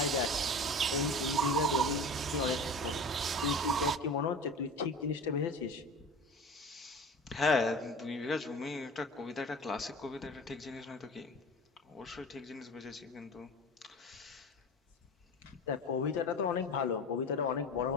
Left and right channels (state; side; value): normal; both; correlation 0.36